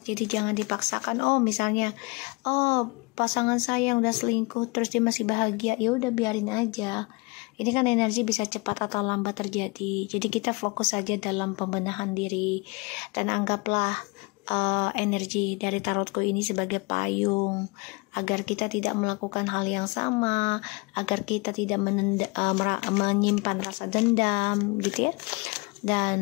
jadi jangan dipaksakan. Oh misalnya, oh pasangan saya udah selingkuh terus dia masih bahagia, ya udah biarin aja. Ini kan energi bisa cepat atau lambat terjadi. Jadi kita fokus saja dalam pembenahan diri dan anggaplah energi dari tarotku ini sebagai payung agar kita tidak melakukan hal yang sama, agar kita tidak menyimpan rasa dendam gitu ya,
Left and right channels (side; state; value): right; quieter; 28.2 dB